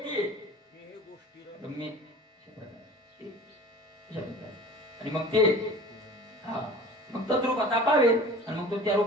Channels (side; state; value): both; normal; correlation 0.41